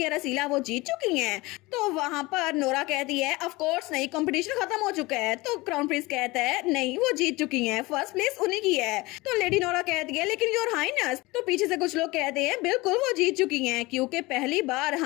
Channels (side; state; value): right; quieter; 22.0 dB